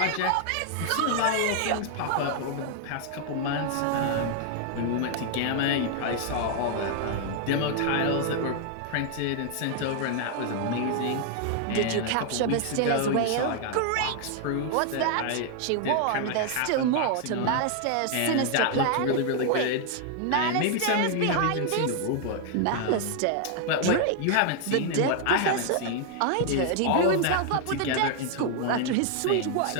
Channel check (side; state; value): both; different; correlation 0.00